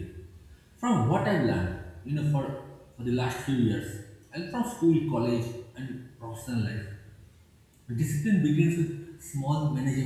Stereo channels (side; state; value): both; identical; correlation 1.00